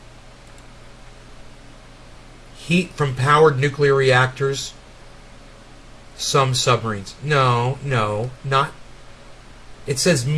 Heat from powered nuclear reactors. Some submarines. No, not. It says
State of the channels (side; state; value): both; identical; correlation 1.00